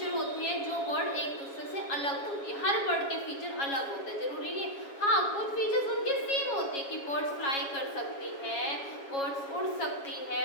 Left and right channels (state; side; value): late; right; 7.2 ms